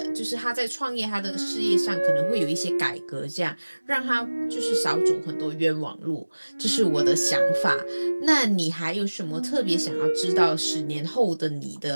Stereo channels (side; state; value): both; inverted; correlation -1.00